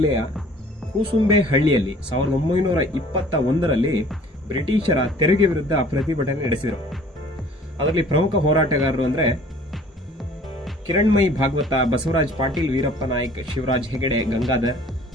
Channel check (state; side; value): normal; both; correlation 0.52